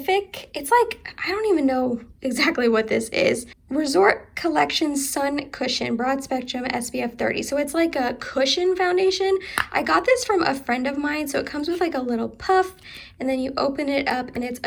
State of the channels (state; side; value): identical; both; correlation 1.00